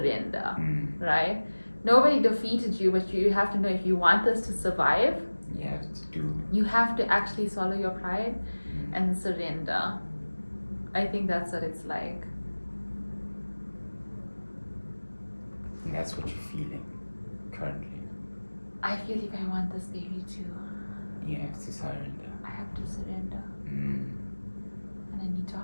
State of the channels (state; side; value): inverted; both; correlation -1.00